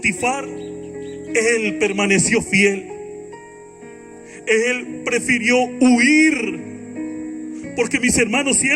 él permaneció fiel. Él prefirió huir. Porque, mis hermanos, si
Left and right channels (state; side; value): identical; both; correlation 1.00